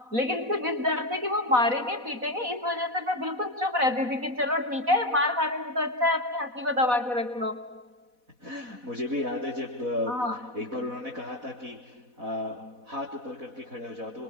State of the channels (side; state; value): left; late; 4.1 ms